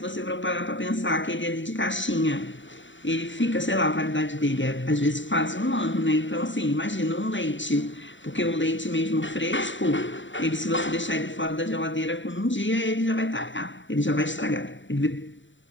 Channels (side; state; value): right; late; 0.55 ms